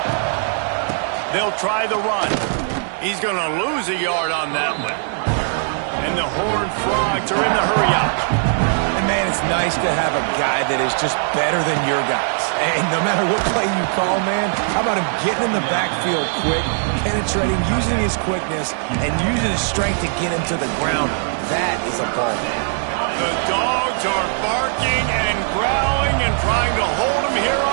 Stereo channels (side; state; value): left; silent; digital silence